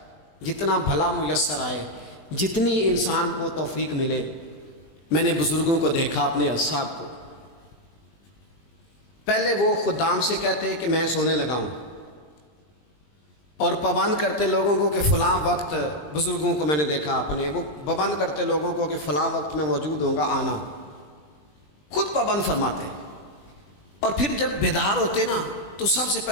جتنا بھلا میسر آئے، جتنی انسان کو توفیق ملے۔ میں نے بزرگوں کو دیکھا، اپنے اصحاب کو، پہلے وہ خدام سے کہتے کہ میں سونے لگا ہوں، اور پابند کرتے لوگوں کو کہ فلاں وقت، بزرگوں کو میں نے دیکھا اپنے، وہ پابند کرتے لوگوں کو کہ فلاں وقت میں موجود ہوں گا، آنا، خود پابند فرماتے۔ اور پھر جب بیدار ہوتے نا تو سب سے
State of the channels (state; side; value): late; right; 20 ms